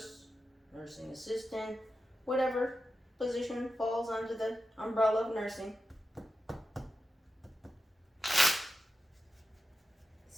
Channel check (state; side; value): normal; both; correlation 0.91